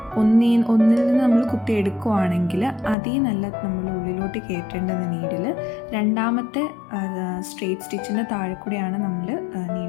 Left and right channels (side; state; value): right; drops out; at 3.0 s